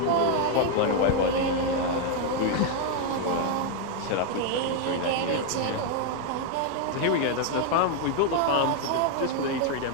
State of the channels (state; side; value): different; both; correlation 0.01